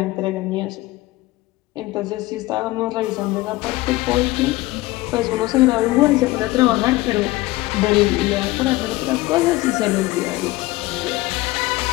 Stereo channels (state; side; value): quieter; right; 19.4 dB